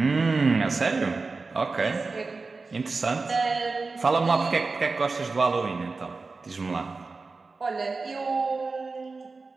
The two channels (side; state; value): left; quieter; 4.0 dB